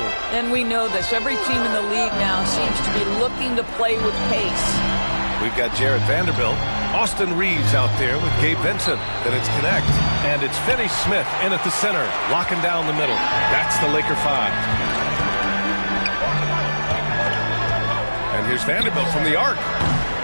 And we know this. Every team in the league now seems to be looking to play with pace. We've got Jared Vanderbilt, Austin Reeves out there with Gabe Vincent. Then it's Connect. And it's Finney Smith in at the center, locking down the middle. That's the Laker 5. And here's Vanderbilt from the arc.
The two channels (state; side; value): inverted; both; correlation -1.00